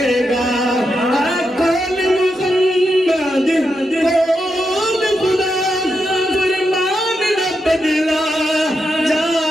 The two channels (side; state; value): both; normal; correlation 0.85